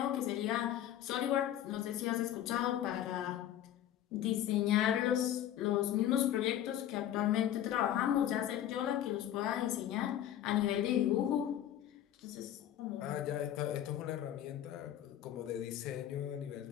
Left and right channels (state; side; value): quieter; right; 11.5 dB